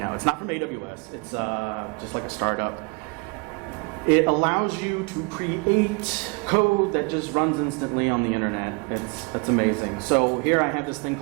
It's not from AWS, it's just like a startup. It allows you to create code that just runs instantly on the internet. It's amazing. So here I have this thing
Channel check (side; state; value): left; quieter; 30.8 dB